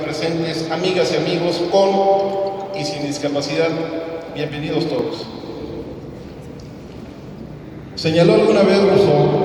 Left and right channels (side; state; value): both; identical; correlation 1.00